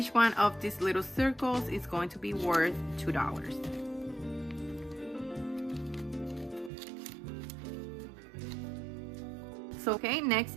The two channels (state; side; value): drops out; left; at 6.7 s